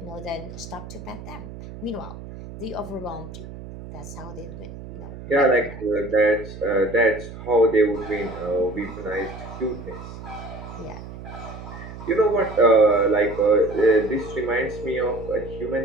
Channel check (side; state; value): right; noise; hum, 13 dB below the sound